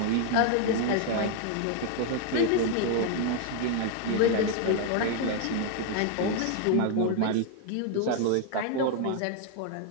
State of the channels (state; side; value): different; both; correlation 0.00